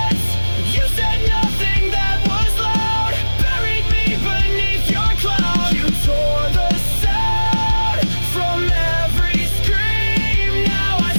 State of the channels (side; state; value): both; inverted; correlation -1.00